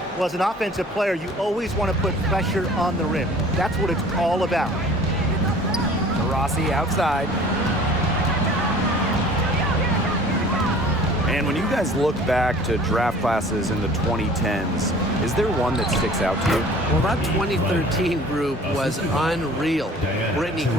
Well, as an offensive player, you always want to put pressure on the rim. That's what it's all about. Rossi outside. And when you guys look back to draft classes in the 2010s, is there one that sticks out to you? Well, that 2013 group was unreal. Brittany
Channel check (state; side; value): normal; both; correlation 0.48